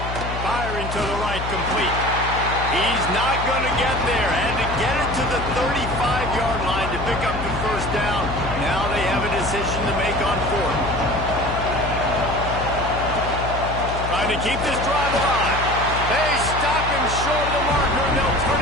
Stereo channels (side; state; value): left; noise; hum, 6 dB below the sound